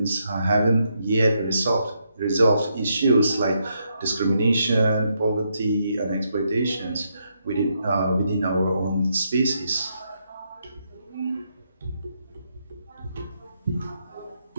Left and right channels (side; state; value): both; inverted; correlation -0.79